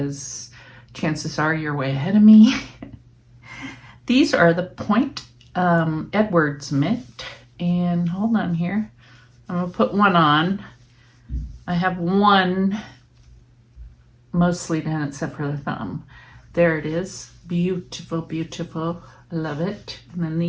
chances are you're way ahead of me. These are the Point Edwards mitt, and hold on here. I'm going to put one on. I have one mostly done except for the thumb. There it is. Beautiful, beautiful. I love it. And then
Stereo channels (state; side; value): identical; both; correlation 1.00